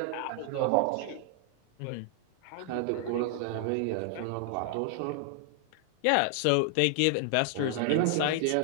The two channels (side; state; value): both; different; correlation 0.00